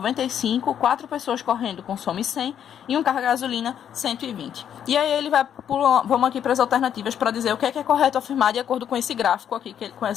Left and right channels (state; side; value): quieter; right; 9.3 dB